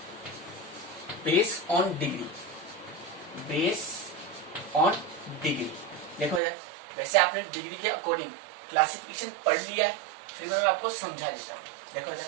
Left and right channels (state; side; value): drops out; left; at 6.4 s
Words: base on degree, base on degree. देखो यार, वैसे आपने डिग्री के अकॉर्डिंग क्लासिफिकेशन पढ़ लिया है, फिर मैं आपको समझा देता हूँ। देखो यार,